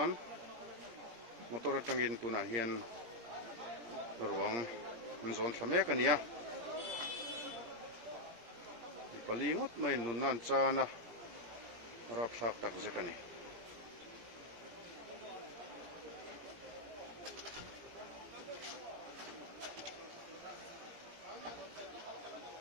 motor atangin tuna hian ruang zon thlamek ania palingot mai nunan chana rap thak tak zetani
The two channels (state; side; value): late; left; 17 ms